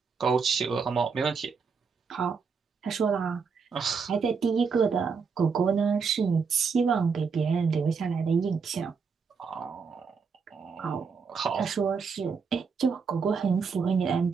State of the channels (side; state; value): left; quieter; 5.5 dB